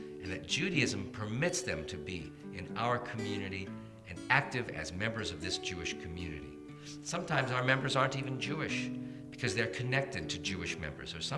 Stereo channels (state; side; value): identical; both; correlation 1.00